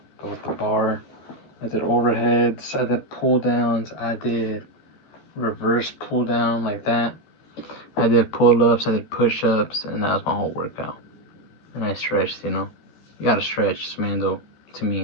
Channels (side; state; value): right; late; 14 ms